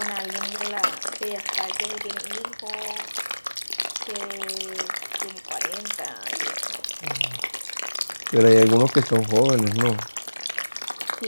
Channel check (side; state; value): both; inverted; correlation -1.00